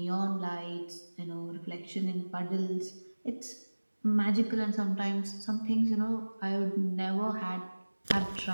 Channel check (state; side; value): inverted; both; correlation -1.00